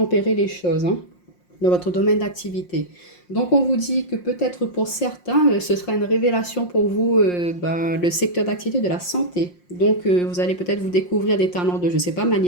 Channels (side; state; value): right; late; 5.6 ms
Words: les choses. dans votre domaine d'activité. Donc, on vous dit que peut-être pour certains, ce sera une révélation pour vous, le secteur d'activité de la santé. Donc, vous allez peut-être vous découvrir des talents de, je ne sais pas,